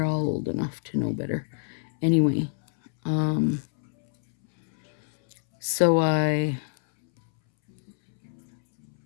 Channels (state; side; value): silent; right; 61 dB below the other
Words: all old enough to know better. Anyway, so I